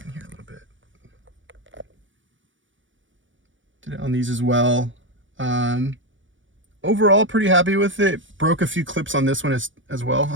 in here a little bit. Did it on these as well. Overall, pretty happy with it. Broke a few clips on this one as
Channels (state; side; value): late; left; 0.56 ms